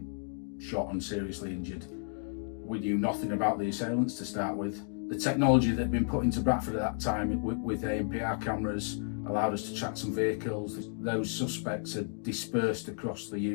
shot and seriously injured. We knew nothing about the assailants to start with. The technology that had been put into Bradford at that time with ANPR cameras allowed us to track some vehicles. Those suspects had dispersed across the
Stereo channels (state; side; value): silent; right; 56 dB below the other